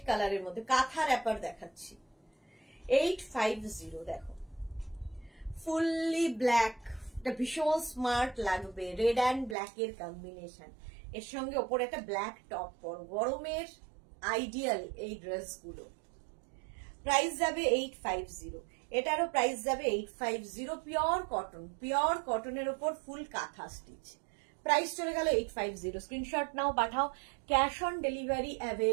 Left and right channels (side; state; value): left; drops out; at 9.6 s